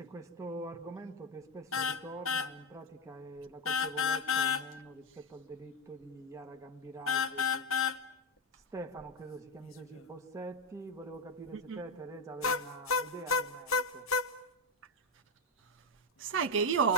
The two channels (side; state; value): both; normal; correlation 0.10